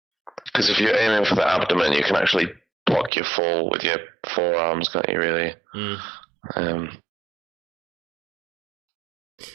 Because if you're aiming for the abdomen, you can actually block your fall with your forearms, can't you, really?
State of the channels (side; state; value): left; drops out; at 3.1 s